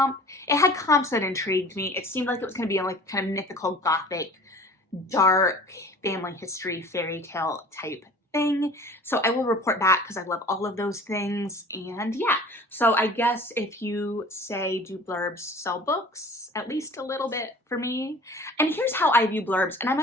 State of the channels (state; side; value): normal; both; correlation 0.44